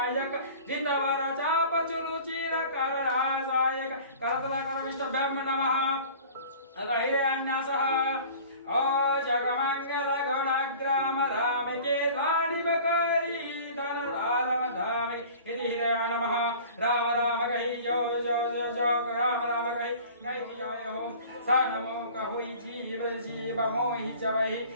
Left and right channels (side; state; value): both; inverted; correlation -0.44